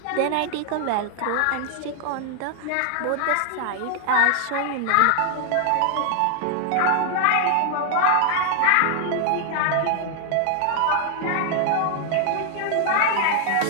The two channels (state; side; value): different; both; correlation 0.00